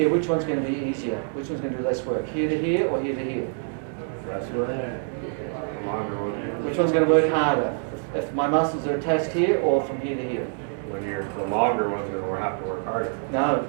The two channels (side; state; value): left; silent; 57 dB below the other